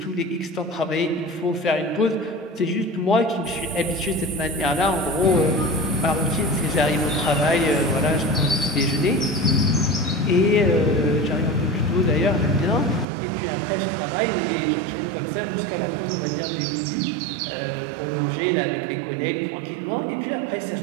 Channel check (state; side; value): drops out; left; at 13.1 s